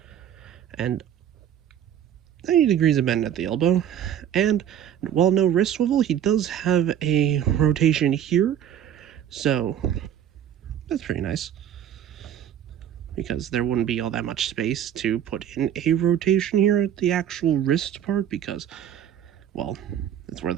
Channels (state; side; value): quieter; left; 10.1 dB